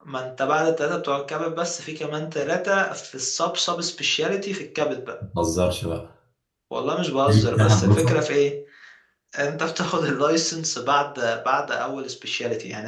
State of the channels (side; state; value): both; identical; correlation 1.00